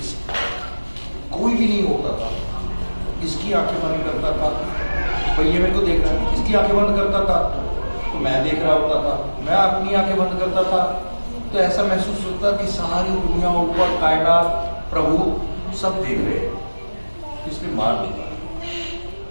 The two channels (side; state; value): both; inverted; correlation -1.00